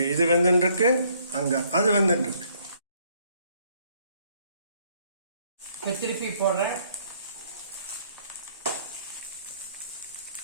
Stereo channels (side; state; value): both; inverted; correlation -0.66